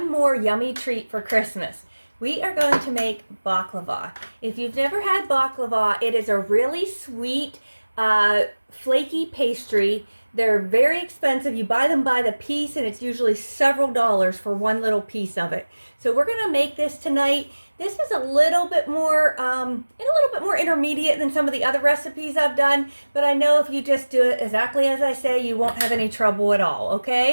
more yummy treat for Christmas. We are going to make baklava. If you've never had baklava, it is a really sweet, flaky pastry. They're very expensive. You buy them by the piece and it's usually several dollars for one little piece of it. So we're going to make this tonight. This is a little bit more intermediate than some of the other recipes I've done, but I know if you just do it exactly as I say, you won't have any trouble at all,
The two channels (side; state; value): both; inverted; correlation -1.00